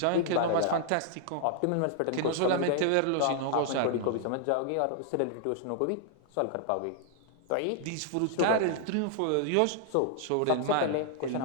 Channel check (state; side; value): different; both; correlation -0.01